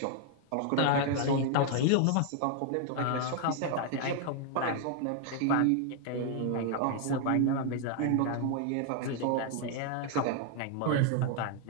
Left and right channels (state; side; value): different; both; correlation 0.00